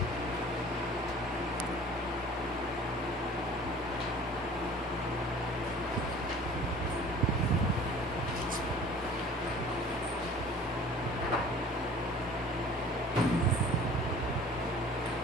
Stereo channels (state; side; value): normal; both; correlation 0.47